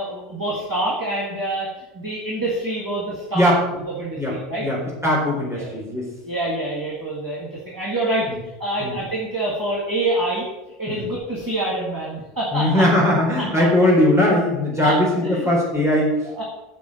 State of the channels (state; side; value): normal; both; correlation 0.38